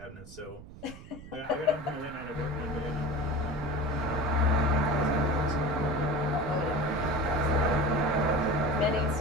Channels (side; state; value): right; noise; rumble, 16 dB below the sound